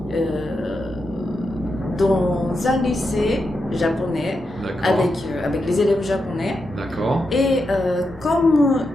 dans un lycée japonais avec les élèves japonais. D'accord. Et comme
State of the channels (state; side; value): normal; both; correlation 0.86